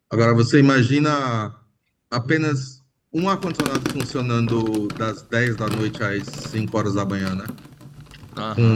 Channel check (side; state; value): both; identical; correlation 1.00